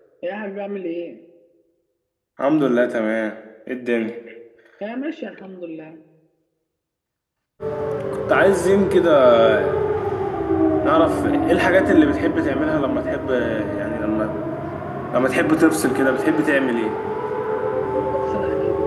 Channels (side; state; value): both; identical; correlation 1.00